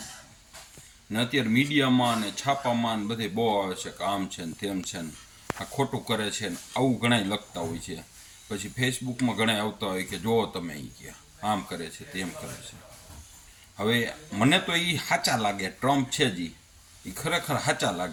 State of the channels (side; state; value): both; identical; correlation 1.00